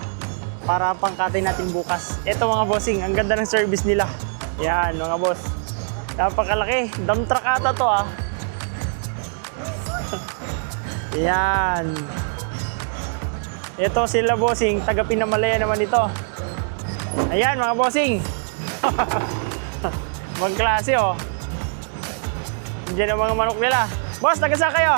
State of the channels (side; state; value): left; silent; digital silence